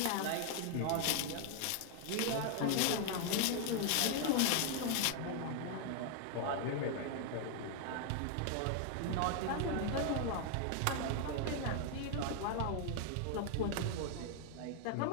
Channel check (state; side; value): different; both; correlation 0.00